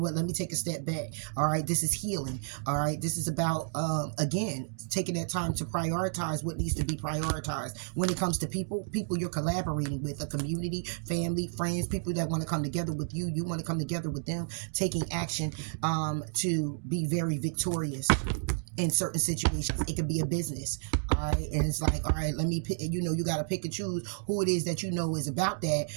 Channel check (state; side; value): silent; left; digital silence